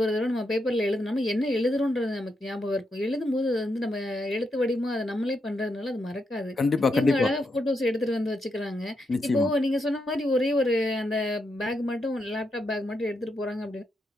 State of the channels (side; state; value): both; normal; correlation 0.82